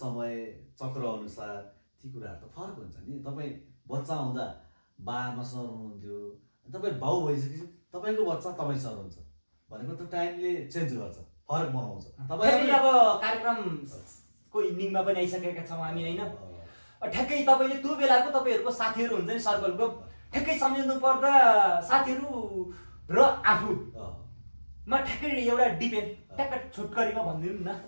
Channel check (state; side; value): inverted; both; correlation -1.00